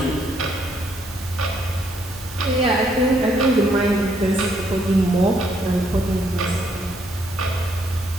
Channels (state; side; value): normal; both; correlation 0.71